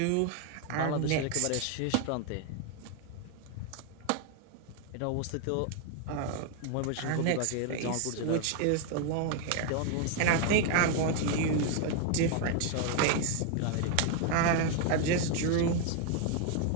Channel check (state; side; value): different; both; correlation 0.01